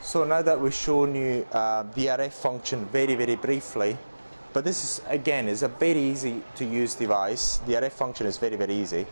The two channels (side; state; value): both; inverted; correlation -1.00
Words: So now that we've shown you the RF function very, very briefly, but this is, again, is a very easy to use device. The RF function is very, very easy.